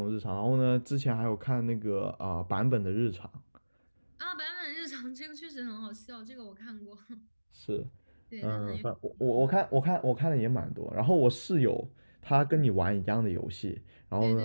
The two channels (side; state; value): both; inverted; correlation -1.00